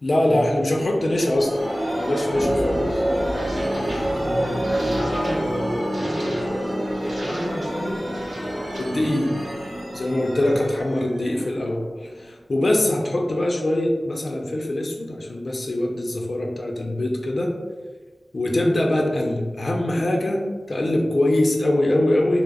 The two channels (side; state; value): both; normal; correlation 0.97